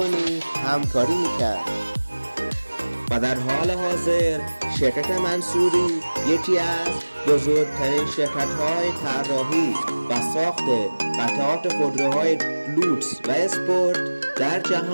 همکاری می‌کرد و در حال حاضر شرکت منصوری یکی از بزرگترین شرکت‌های طراحی و ساخت قطعات خودروهای لوکس و اسپورت در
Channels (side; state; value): both; inverted; correlation -1.00